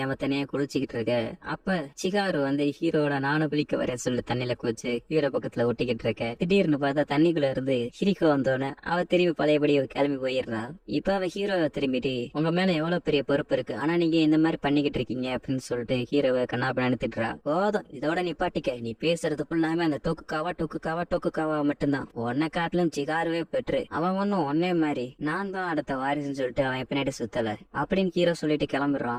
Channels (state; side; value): identical; both; correlation 1.00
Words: தனியா குளிச்சுக்கிட்டு இருக்க. அப்ப சிகாரு வந்து ஹீரோட நானும் குளிக்க வர சொல்லி தண்ணியில குளிச்சு ஹீரோ பக்கத்துல ஒட்டிக்கிட்டு இருக்க. திடீர்னு பார்த்தா தண்ணிக்குள்ள இருந்து ஹிரிக்கோ வந்தோன்னு அவ திரும்பி பழையபடி கிளம்பி போயிடுறா. இப்ப அவ ஹீரோவை திரும்பிட்டு உங்க மேல எவ்வளவு பெரிய பொறுப்பு இருக்கு, ஆனா நீங்க இந்த மாதிரி பண்ணிக்கிட்டு இருக்கீங்க அப்படின்னு சொல்லிட்டு ஹீரோவை கண்ணாபண்ணு திட்டுறா. போதும் இதோட நிப்பாட்டிக்க, நீ பேசுறது ஃபுல்லாமே அந்த டோக்குகாவா மட்டும்தான், உன்னை காட்டிலும் சிகாருவே பெற்று அவன் ஒன்னும் ஒன்னே மாதிரி நான் தான் அடுத்த வாரிசுன்னு சொல்லிட்டு அவன் பின்னாடி சுத்தல அப்படின்னு ஹீரோ சொல்லிட்டு